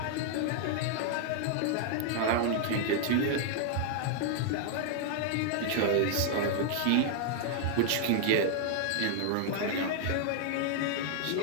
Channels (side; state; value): both; different; correlation 0.00